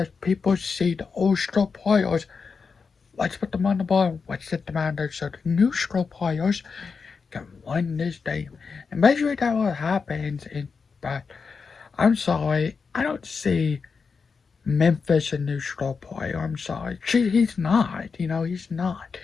people see the old star players. Let's put them on the ball. Let's set them out there so the new star players can win this game. And basically that's what happens. But I'm sorry, I don't see Memphis a new star player. I'm sorry. He's not. He's not.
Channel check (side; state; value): right; quieter; 5.2 dB